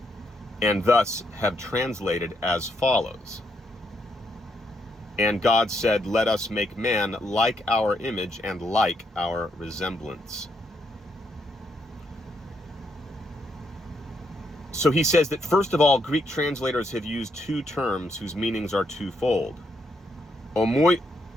and thus have translated as follows. And God said, let us make man like our image and like our resemblance. So he says that, first of all, Greek translators have used two terms whose meanings are twofold.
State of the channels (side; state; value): both; normal; correlation 0.77